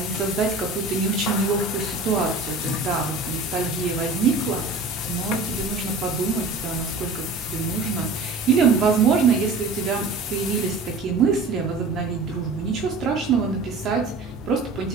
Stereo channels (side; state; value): left; quieter; 3.4 dB